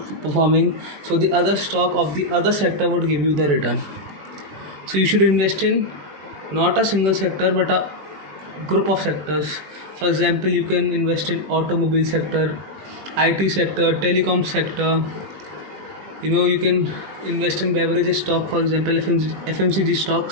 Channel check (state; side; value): late; left; 20 ms